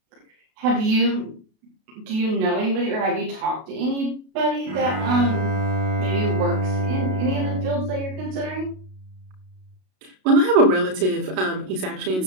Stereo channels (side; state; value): left; late; 32 ms